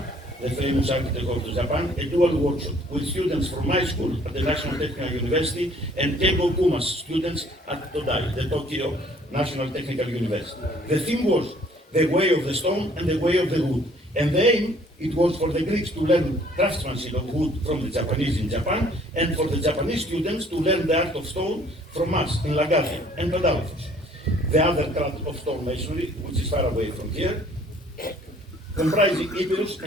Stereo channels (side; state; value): both; normal; correlation 0.58